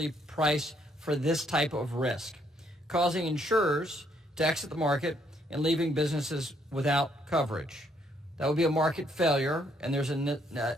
price for this type of risk, causing insurers to exit the market and leaving businesses without coverage. That would be a market failure, and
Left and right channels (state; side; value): normal; both; correlation 0.70